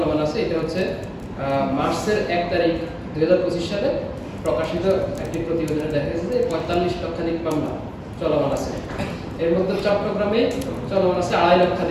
আছে। এটা হচ্ছে মার্চের 1 তারিখ 2025 সালে প্রকাশিত একটি প্রতিবেদনে দেখা গেছে যে 45 লক্ষাধিক মামলা চলমান আছে। এর মধ্যে চট্টগ্রামে চলমান আছে 2.5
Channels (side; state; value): both; identical; correlation 1.00